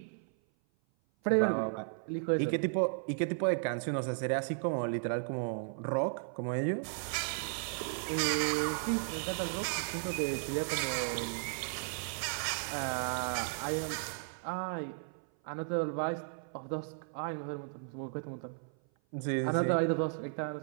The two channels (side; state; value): left; silent; 55 dB below the other